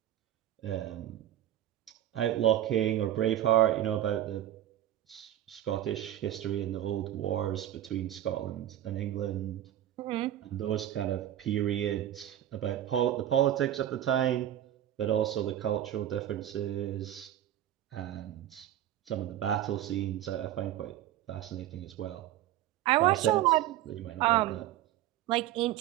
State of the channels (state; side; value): quieter; left; 12.2 dB